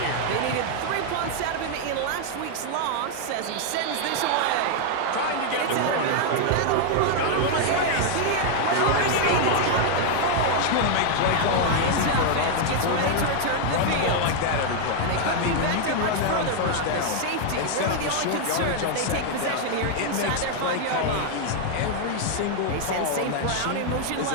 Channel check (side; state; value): both; different; correlation 0.00